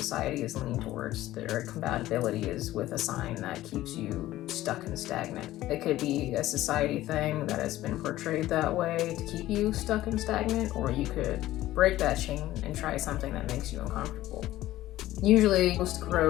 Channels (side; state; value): right; quieter; 15.3 dB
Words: is leaning towards. Their compatibility is with a sign that keeps you stuck and stagnant. It could be a society thing that has been portrayed that way to keep you stuck and stagnant, or you could break that chain and try something that makes you uncomfortable. Usually, most